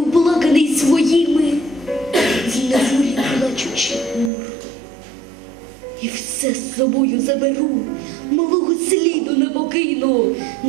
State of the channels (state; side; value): drops out; left; at 4.3 s